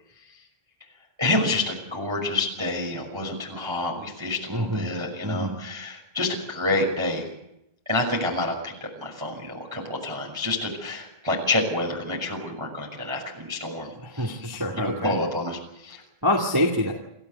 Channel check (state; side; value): late; left; 1.3 ms